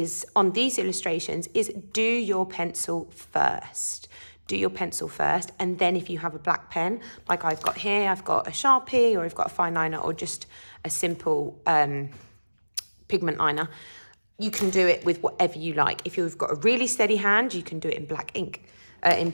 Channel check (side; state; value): both; inverted; correlation -1.00